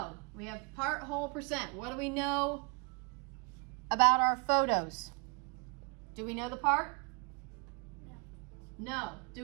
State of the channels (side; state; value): left; quieter; 33.0 dB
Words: We have part, whole, percent. What do we know about our photos? Do we know the part? No. Do